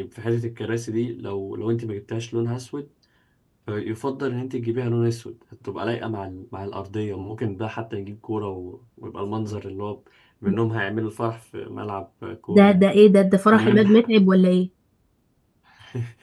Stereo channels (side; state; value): both; identical; correlation 1.00